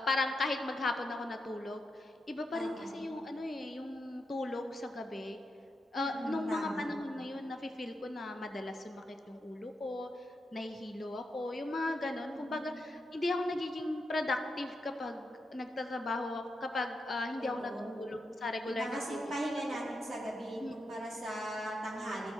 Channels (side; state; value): both; normal; correlation 0.85